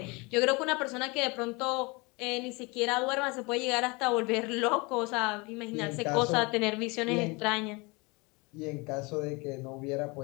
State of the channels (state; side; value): quieter; right; 27.0 dB